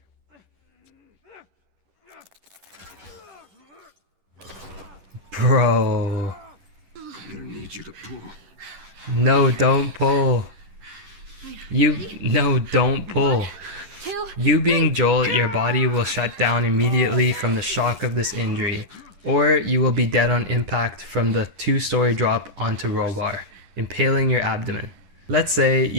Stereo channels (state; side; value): late; left; 10 ms